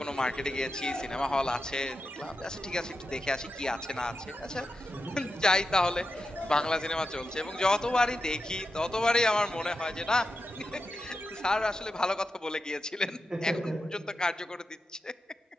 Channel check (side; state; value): both; normal; correlation 0.89